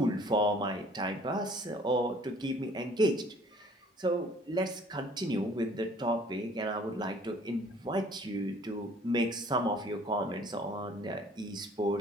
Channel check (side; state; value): both; normal; correlation 0.55